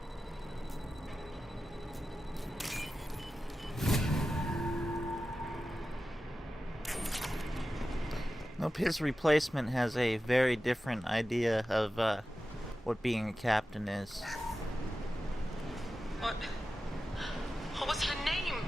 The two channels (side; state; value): both; normal; correlation 0.93